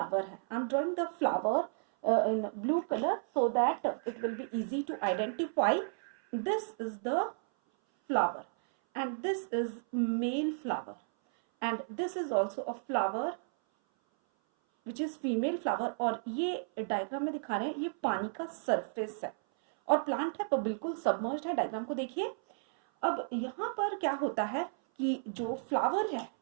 है। I am drawing the flower in blue colour so that it will be easy to identify. This is the flower and this is male flower and this is also a flower which is female flower. और ये diagram में दिखा रहे हैं ये पानी का surface है और प्लांट है पर बिल्कुल सबमर्ज्ड है। डायग्राम को देखिए। अब यहाँ पर क्या होता है कि जो फ्लावर है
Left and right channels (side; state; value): left; silent; 56 dB below the other